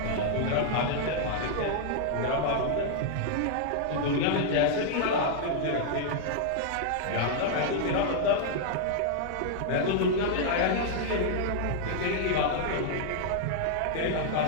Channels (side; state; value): both; different; correlation -0.01